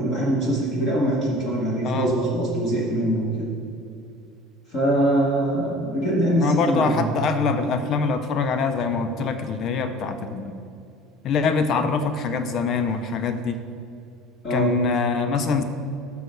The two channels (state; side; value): normal; both; correlation 0.44